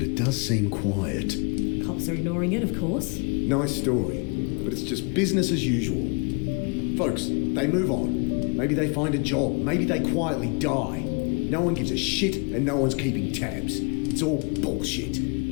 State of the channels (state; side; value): quieter; right; 33.5 dB